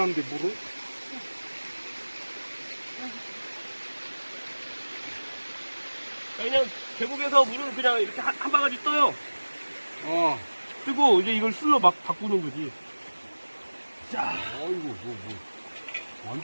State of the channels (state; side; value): inverted; both; correlation -1.00